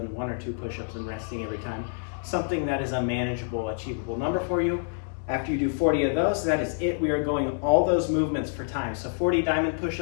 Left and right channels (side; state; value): right; silent; digital silence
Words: 1 or 2 push-ups and resting every time. Something that is a manageable, achievable number for you. After you do 40 of those, that is it. We are going all those movements for time. So 40 diamond